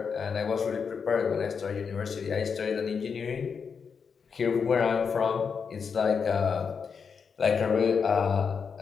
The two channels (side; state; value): right; quieter; 6.0 dB